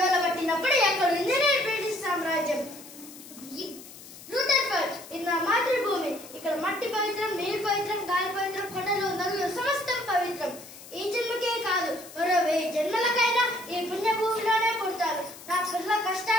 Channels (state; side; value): noise; left; hiss, 17 dB below the sound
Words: పట్టినప్పుడు ఎక్కడుంది బ్రిటిష్ సామ్రాజ్యం. రూథర్ఫర్డ్ ఇది నా మాతృభూమి. ఇక్కడ మట్టి పవిత్రం, నీరు పవిత్రం, గాలి పవిత్రం, కొండలు నదులు సమస్తం పవిత్రం. ఈ జన్మకే కాదు మరో 1000 జన్మలకైనా ఈ పుణ్యభూమిలోనే పుడతాను. నా పిల్లల